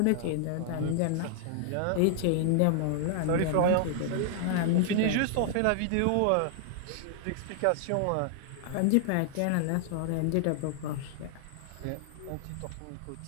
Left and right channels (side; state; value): both; different; correlation 0.00